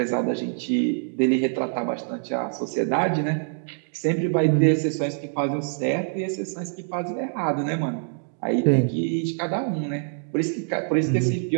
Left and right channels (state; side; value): silent; left; digital silence